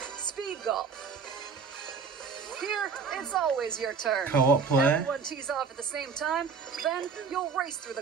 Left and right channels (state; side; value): quieter; left; 5.5 dB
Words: Speed Golf. Here, it's always your turn. Co-op play. Everyone tees off at the same time, then you'll race through